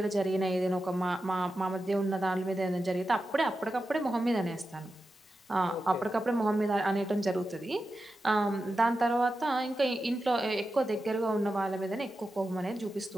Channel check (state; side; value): normal; both; correlation 0.91